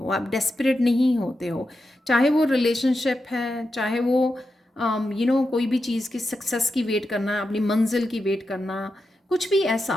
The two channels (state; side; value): normal; both; correlation 0.88